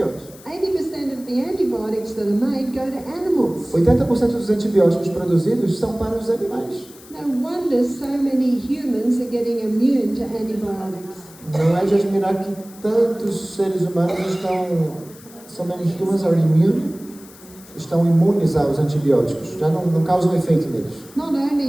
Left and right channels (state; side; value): noise; left; hiss, 22 dB below the sound